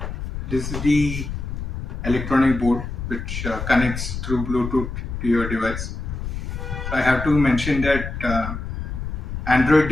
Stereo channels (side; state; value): left; noise; rumble, 6 dB below the sound